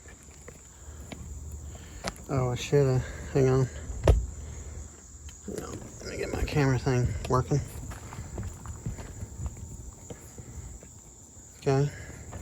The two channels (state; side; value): identical; both; correlation 1.00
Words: Oh, I should have. Hang on. Let me get my camera thing working. Okay.